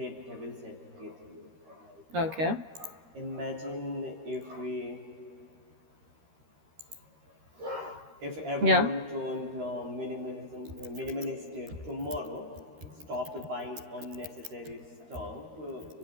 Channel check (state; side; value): late; left; 13 ms